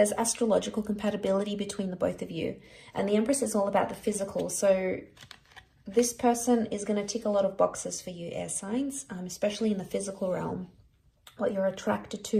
astrological compatibility between the both of you. And the Empress is all about the physical. So this person is going to tick a lot of boxes for you, air signs, especially in the physical realm. What you're attracted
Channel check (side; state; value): both; identical; correlation 1.00